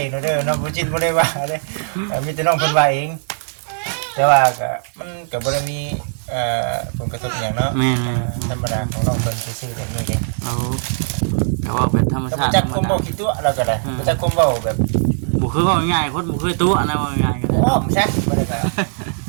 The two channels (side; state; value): left; silent; digital silence